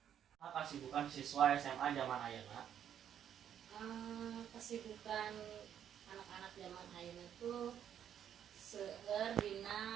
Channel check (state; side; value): quieter; left; 9.4 dB